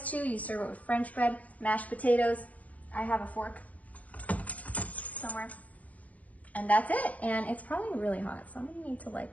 too. You serve it with French bread, mashed potatoes. I have a fork somewhere. And that's it. And it's probably really hot, so I'm gonna need to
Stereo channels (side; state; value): right; late; 0.071 ms